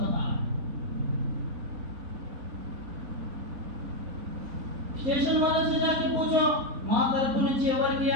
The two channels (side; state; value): left; late; 4.0 ms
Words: స్టేషన్ वाले से जाके पूछो మా తరపు నుంచి ఎవరికి